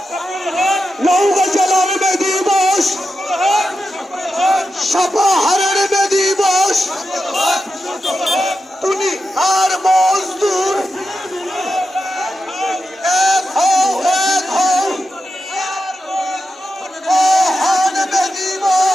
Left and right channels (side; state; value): both; normal; correlation 0.89